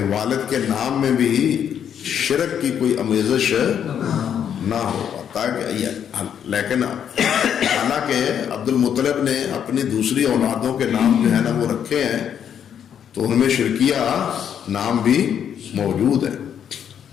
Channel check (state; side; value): quieter; right; 8.7 dB